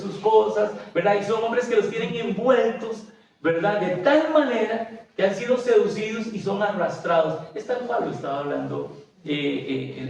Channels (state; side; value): identical; both; correlation 1.00